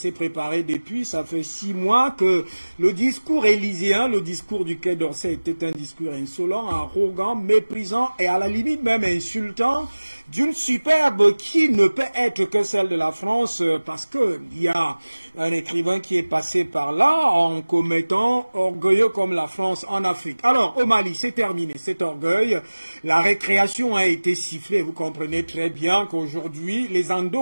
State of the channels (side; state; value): both; inverted; correlation -1.00